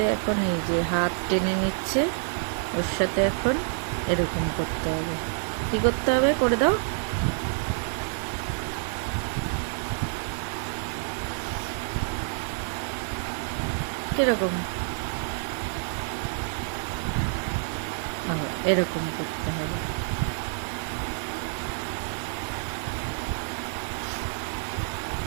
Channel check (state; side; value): silent; left; digital silence